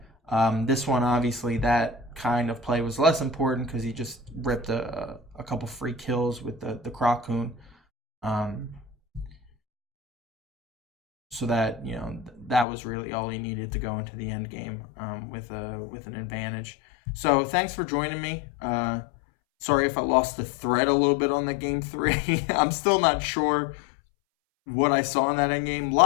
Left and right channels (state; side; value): drops out; right; at 12.7 s